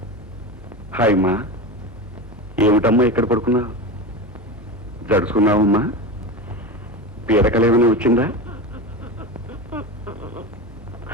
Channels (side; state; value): both; normal; correlation 0.23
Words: హాయ్ అమ్మా, ఏమిటమ్మా ఇక్కడ పడుకున్నావు? జడుచుకున్నావమ్మా? పీడకలేమని వచ్చిందా?